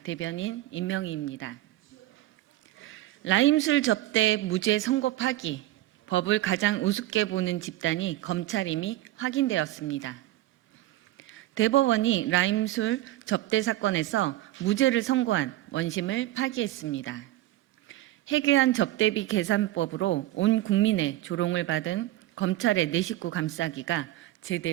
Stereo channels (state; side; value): quieter; left; 15.5 dB